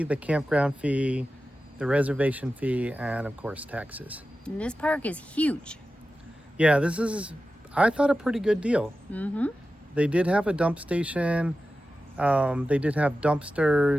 the campground fee, the reservation fee, and of course taxes. And this park is huge. Yeah, this is, I thought, a pretty good deal. Mm-hmm. They did have a dump station. They did have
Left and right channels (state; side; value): normal; both; correlation 0.93